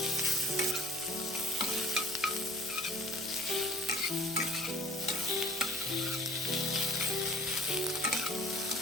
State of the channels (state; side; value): normal; both; correlation 0.50